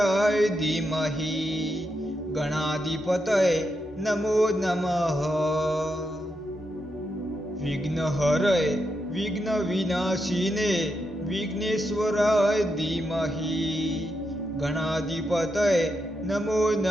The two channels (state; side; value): normal; both; correlation 0.84